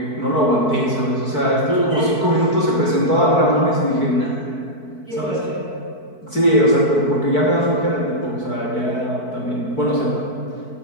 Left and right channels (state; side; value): late; right; 4.6 ms